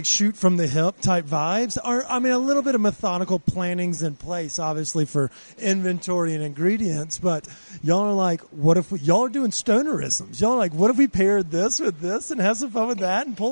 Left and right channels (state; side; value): inverted; both; correlation -1.00